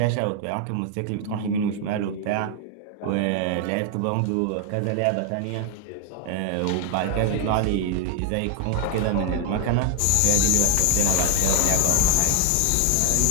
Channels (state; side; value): different; both; correlation 0.01